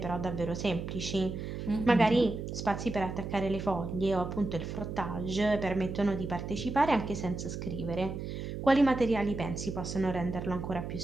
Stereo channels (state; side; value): noise; right; hum, 6 dB below the sound